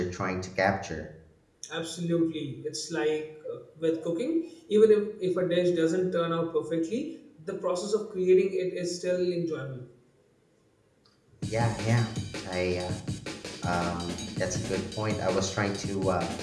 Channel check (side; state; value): both; identical; correlation 1.00